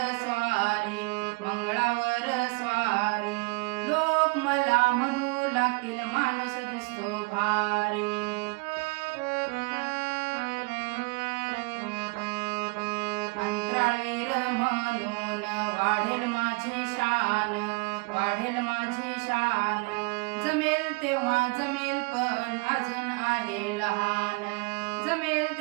स्वारी, मंगळावर स्वारी. लोक मला म्हणू लागतील माणूस दिसतो भारी. अंतराळवीर म्हणून वाढेल माझी शान, वाढेल माझी शान. जमेल तेव्हा जमेल पण अजून आहे लहान, जमेल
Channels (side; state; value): left; quieter; 29.6 dB